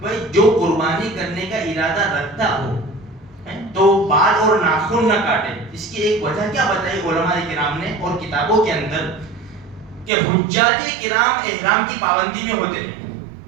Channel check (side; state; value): left; drops out; at 10.1 s